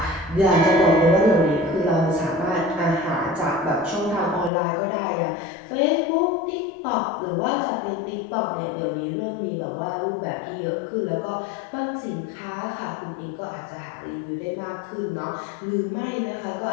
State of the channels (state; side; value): drops out; right; at 4.5 s